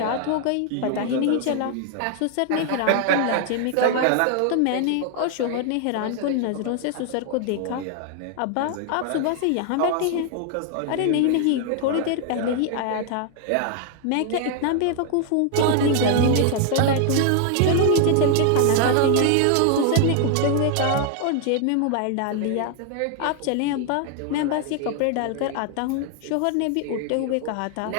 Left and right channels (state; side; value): different; both; correlation 0.00